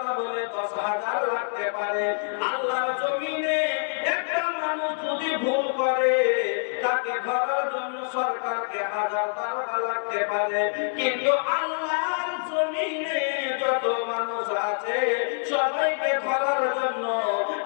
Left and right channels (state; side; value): silent; right; 61 dB below the other